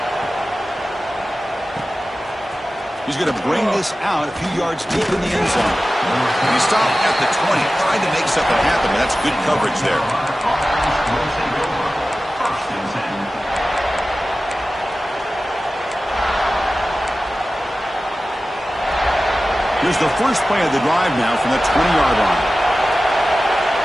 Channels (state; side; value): normal; both; correlation 0.95